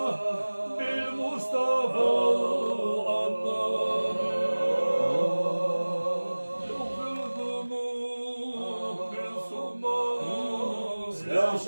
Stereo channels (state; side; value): inverted; both; correlation -1.00